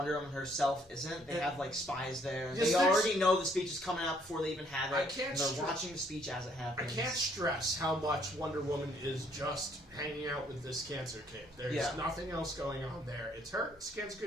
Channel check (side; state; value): both; normal; correlation 0.66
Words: Woman herself isn't. They have spies there. Yes, they already know the speech is coming out before they even have it. And they're watching the speech as it happens. I can't stress how much Wonder Woman is just hanging out with this cancer kid. There's nothing else going on there. It's her, it's cancer